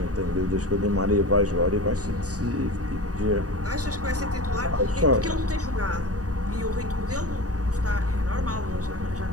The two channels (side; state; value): left; late; 0.67 ms